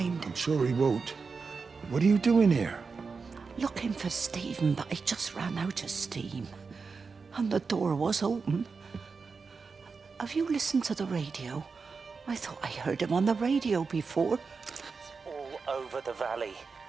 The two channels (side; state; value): left; quieter; 4.9 dB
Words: I'm sure he won't. What are you doing here? Looking for Stephen, but I just ran out of steam. And the door was open. Have you listened to the radio? I thought I heard him on the radio before. All over the valley.